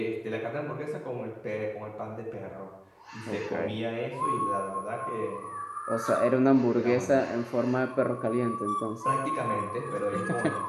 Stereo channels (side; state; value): both; identical; correlation 1.00